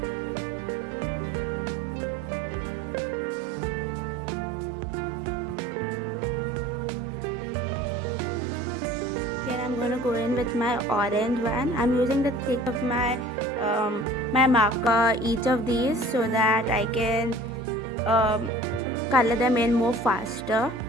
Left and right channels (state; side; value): normal; both; correlation 0.46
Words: I'm going to go in with my orange one. I'm using the tip of my my marker each of these so that I can color them in more faster.